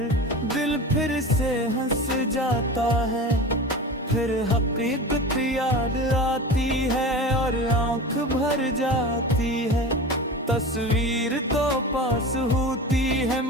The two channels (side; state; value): both; normal; correlation 0.31